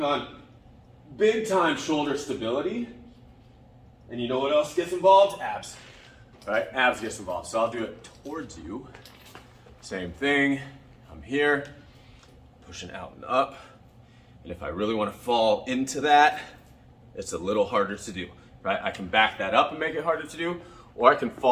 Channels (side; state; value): both; identical; correlation 1.00